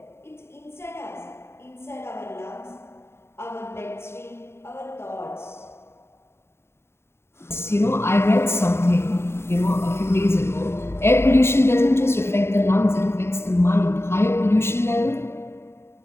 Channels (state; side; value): late; right; 0.12 ms